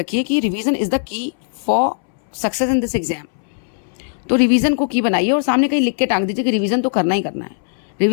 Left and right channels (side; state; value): right; silent; 65 dB below the other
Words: कि revision is the key for success in this exam. तो रिवीजन को की बनाइए और सामने कहीं लिख के टांग दीजिए कि रिवीजन तो करना ही करना है।